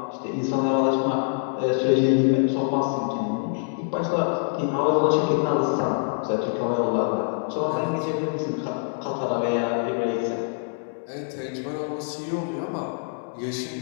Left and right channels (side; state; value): right; silent; digital silence